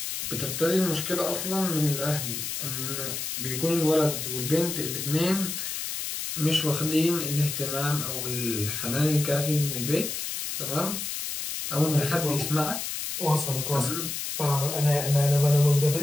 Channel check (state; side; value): noise; left; hiss, 4 dB below the sound